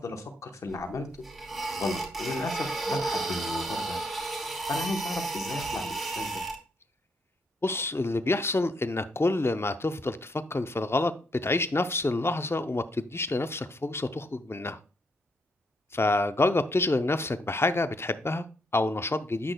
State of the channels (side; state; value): both; normal; correlation 0.75